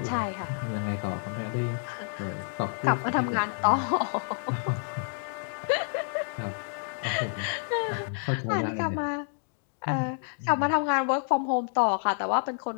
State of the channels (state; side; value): silent; right; digital silence